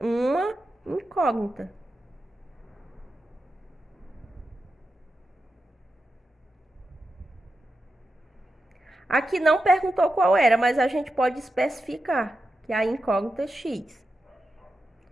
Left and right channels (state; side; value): normal; both; correlation 0.89